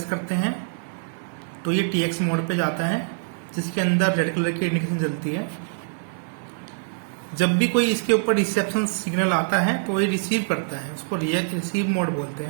करते हैं तो ये TX मोड पे जाता है, जिसके अंदर रेड कलर की इंडिकेशन जलती है। जब भी कोई इसके ऊपर रिसेप्शन सिग्नल आता है तो ये रिसीव करता है, उसको रिसीव मोड बोलते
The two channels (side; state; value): left; silent; digital silence